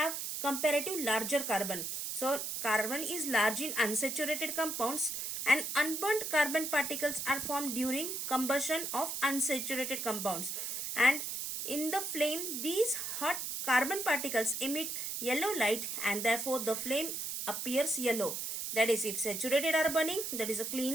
comparative larger carbon. So carbon is large in unsaturated compounds and unburnt carbon particles are formed during combustion of unsaturated compounds. And in the flame, these hot carbon particles emit yellow light and therefore the flame appears yellow. That is, if saturated are burning, that is a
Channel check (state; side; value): noise; right; hiss, 4 dB below the sound